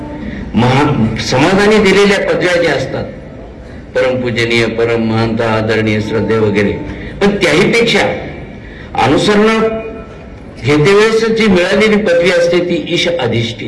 समाजाने दिलेल्या पदव्या ज्या असतात, परमपूजनीय, परम महंता, आदरणीय, श्रद्धे वगैरे, पण त्याहीपेक्षा अनुसरण घेतेवेळेस जी मिळालेली पदवी असते ती ईश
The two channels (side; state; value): both; identical; correlation 1.00